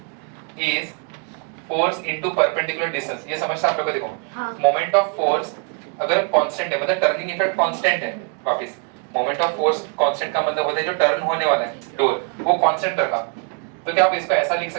is force into perpendicular distance, ये समझते आप लोग को। देखो मोमेंट ऑफ फोर्स अगर कांस्टेंट है मतलब टर्निंग इफेक्ट कांस्टेंट है, वापस मोमेंट ऑफ फोर्स कांस्टेंट का मतलब होता है जो टर्न होने वाला है डोर वो कांस्टेंट रखा। तो क्या आप इसको ऐसा लिख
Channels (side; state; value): left; quieter; 38.5 dB